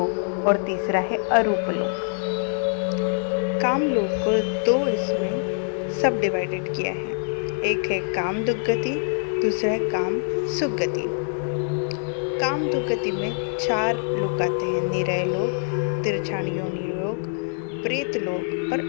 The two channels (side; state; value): right; silent; digital silence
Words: और तीसरा है अरूप लोक। काम लोक को 2 इसमें सब डिवाइडेड किया है। एक है काम दुर्गति, दूसरा है काम सुगति। काम दुर्गति में 4 लोक आते हैं, निरय लोक, तिरछान योनि लोक, प्रेत लोक और